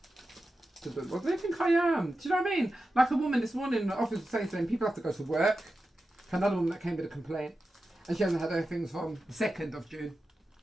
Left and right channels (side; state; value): both; normal; correlation 0.92